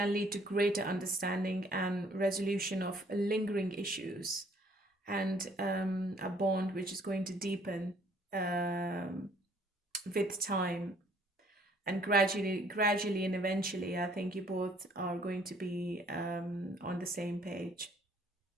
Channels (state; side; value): normal; both; correlation 0.61